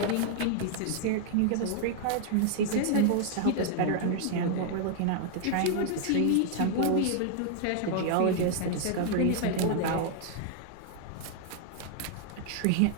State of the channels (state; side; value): different; both; correlation 0.00